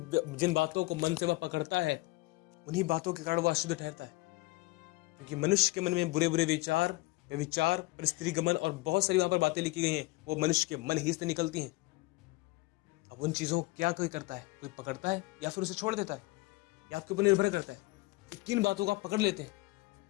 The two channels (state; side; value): quieter; right; 21.8 dB